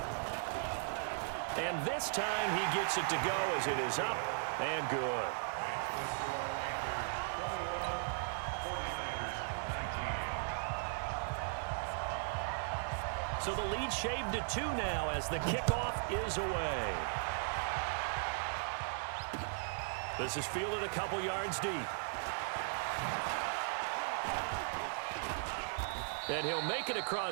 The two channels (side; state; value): left; silent; digital silence